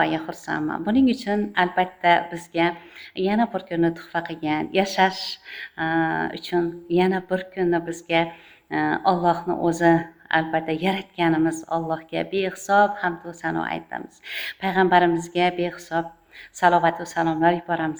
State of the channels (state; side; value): identical; both; correlation 1.00